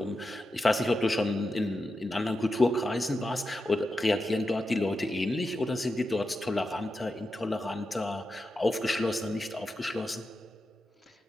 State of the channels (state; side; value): normal; both; correlation 0.89